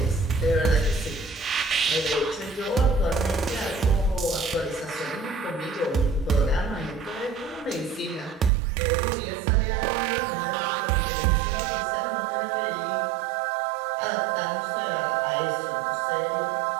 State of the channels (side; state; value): left; drops out; at 8.5 s